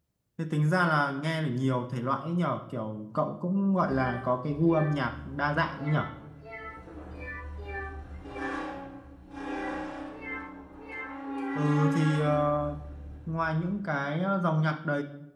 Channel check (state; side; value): identical; both; correlation 1.00